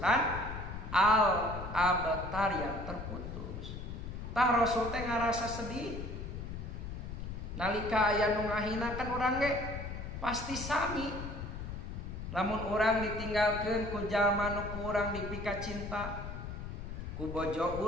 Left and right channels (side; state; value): left; noise; rumble, 7 dB below the sound